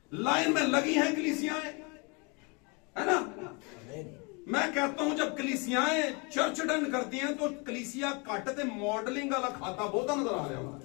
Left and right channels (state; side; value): quieter; right; 31.0 dB